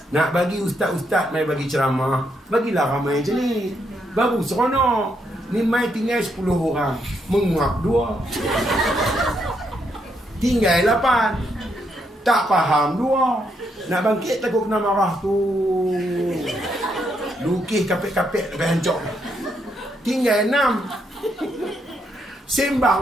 nak bagi ustaz-ustaz mai bagi ceramah, bagilah ramai macam ni. Baru seronok. Ni mai tinggal 10 orang, menguap 2. Tinggal 8. Tak faham 2. Nak bangkit takut kena marah tu. Lukis kapek-kapek sampai hancur. Tinggal 6.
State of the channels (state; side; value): normal; both; correlation 0.77